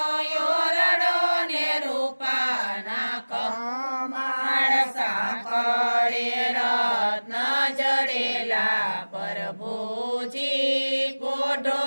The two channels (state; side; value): inverted; both; correlation -1.00